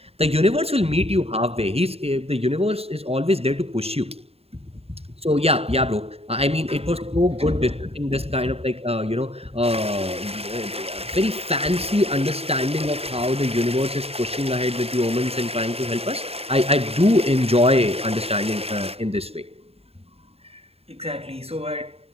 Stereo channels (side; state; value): left; late; 0.29 ms